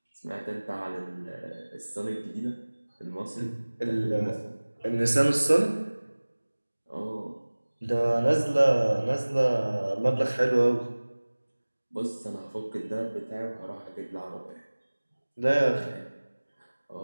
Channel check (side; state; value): both; inverted; correlation -1.00